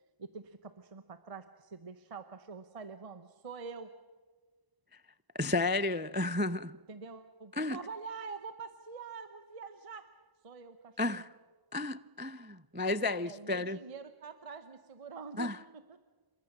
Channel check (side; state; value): left; late; 1.0 ms